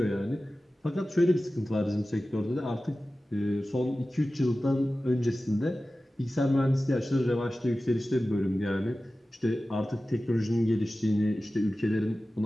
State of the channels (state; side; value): normal; both; correlation 0.95